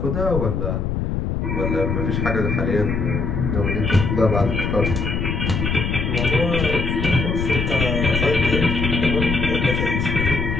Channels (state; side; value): noise; left; rumble, 1 dB below the sound